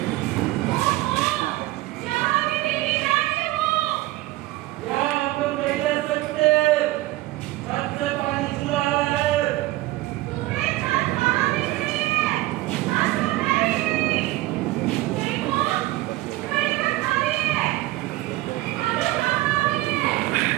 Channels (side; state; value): left; quieter; 17.8 dB